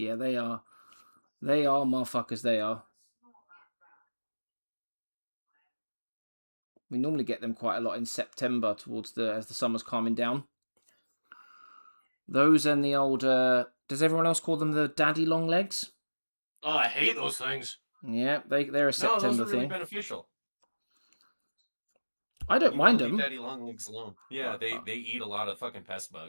they are. They are motherfuckers, they are. We normally get them quite a lot in September as the summer's calming down. Those and the old, does everyone else call them the daddy long legs? Oh, I hate those things. Yeah, they're a No, September those are really thing. beneficial. I don't mind Leave them. daddy long legs alone. Yeah, they eat a lot of fucking pest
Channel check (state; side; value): inverted; both; correlation -1.00